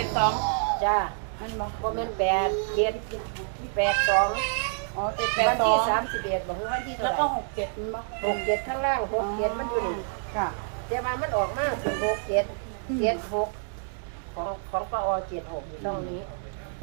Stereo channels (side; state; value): left; silent; digital silence